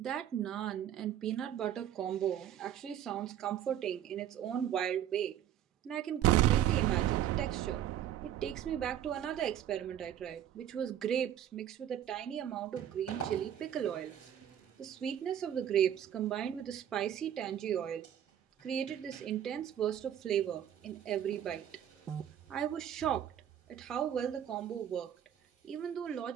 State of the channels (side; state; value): left; quieter; 10.5 dB